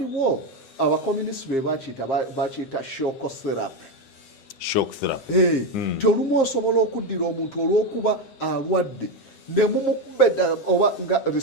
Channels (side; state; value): right; late; 7.5 ms